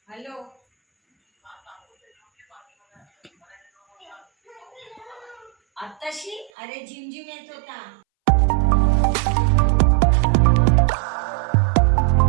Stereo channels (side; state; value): left; drops out; at 6.5 s